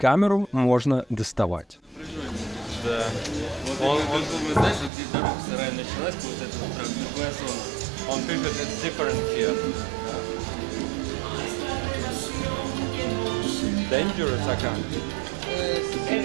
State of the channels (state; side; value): drops out; left; at 4.9 s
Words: можно доставать. Да. Он знаешь, где дорога сарая началась, вот это вот прям другая зона. Он пишет, it's different here. Dangerous acá.